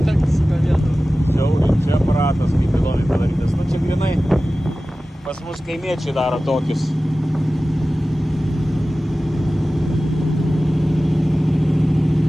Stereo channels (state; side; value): normal; both; correlation 0.96